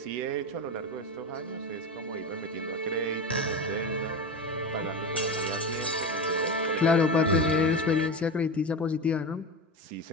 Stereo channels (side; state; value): both; normal; correlation 0.22